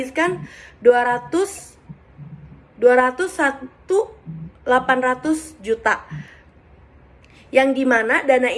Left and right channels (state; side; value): identical; both; correlation 1.00